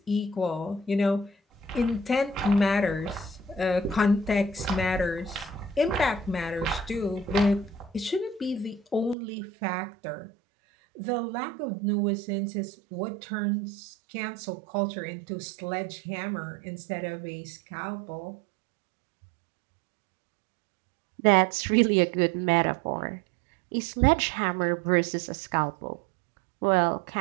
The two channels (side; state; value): left; drops out; at 9.2 s